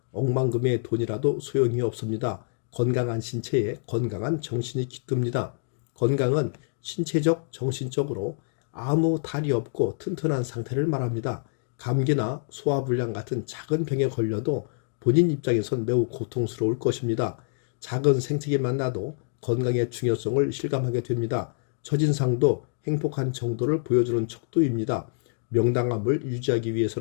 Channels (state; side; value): silent; right; digital silence